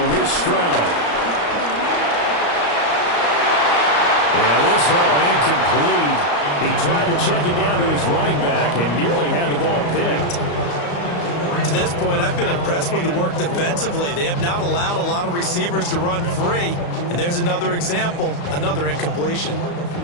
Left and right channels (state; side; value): late; right; 34 ms